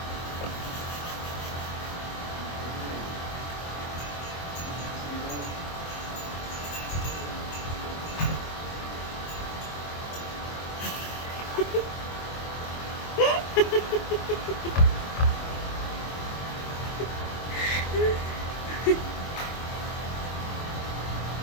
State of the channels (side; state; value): right; late; 24 ms